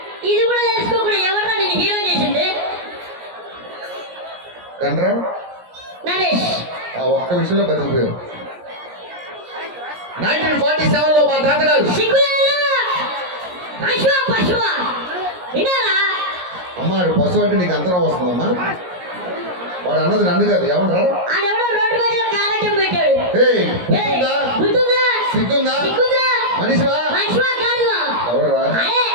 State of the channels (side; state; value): left; late; 17 ms